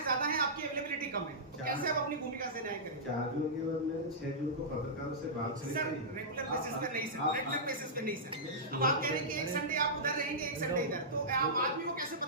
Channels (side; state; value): both; normal; correlation -0.15